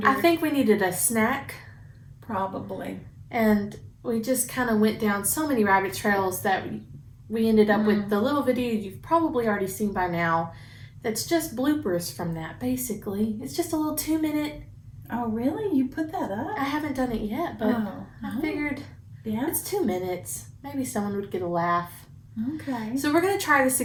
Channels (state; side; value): identical; both; correlation 1.00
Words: I think we needed a snack. Probably. And we just kind of went down so many rabbit trails that we ended up with the little video you've probably already seen by now. That's just bloopers from that, basically. It's just a little 2-minute. Oh, really? You put that up? I haven't done it yet, but I figured it's 2 minutes. Maybe someone would get a laugh. Okay. So we're going to try this